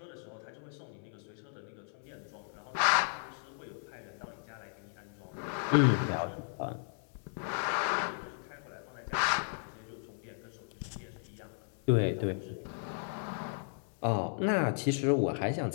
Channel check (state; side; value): silent; right; 54 dB below the other